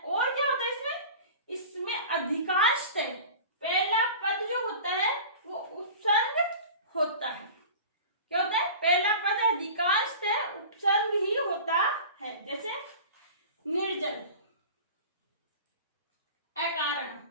और क्या होता है इसमें अधिकांशतः पहला पद जो होता है वो उपसर्ग होता है। क्या होता है, पहला पद अधिकांशतः उपसर्ग ही होता है। जैसे निर्जल, अकारण,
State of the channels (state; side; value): inverted; both; correlation -0.37